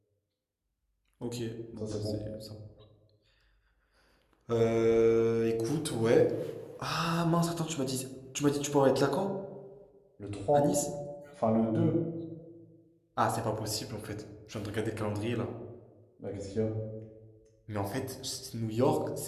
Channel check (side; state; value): both; identical; correlation 1.00